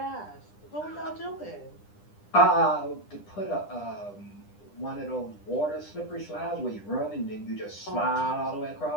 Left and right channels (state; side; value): late; right; 10 ms